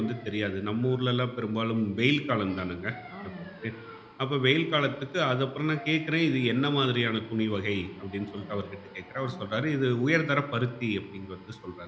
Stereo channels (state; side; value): identical; both; correlation 1.00